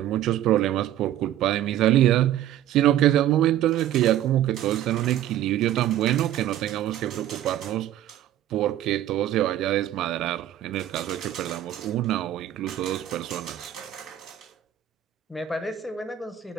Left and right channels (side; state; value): left; quieter; 12.3 dB